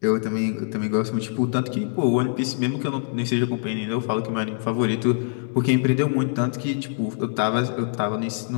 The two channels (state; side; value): silent; right; digital silence